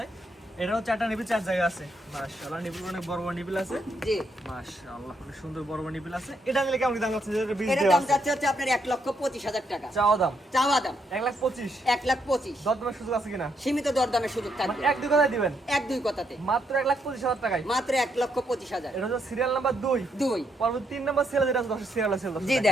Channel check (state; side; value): normal; both; correlation 0.76